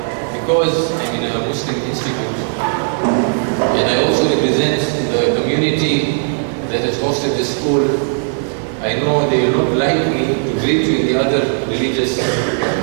Because I'm in a Muslim institute and I also represent the community that has hosted this school, I know they will not like me to greet you in the other religious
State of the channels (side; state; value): left; silent; 62 dB below the other